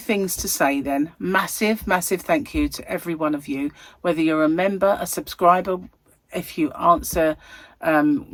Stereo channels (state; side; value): identical; both; correlation 1.00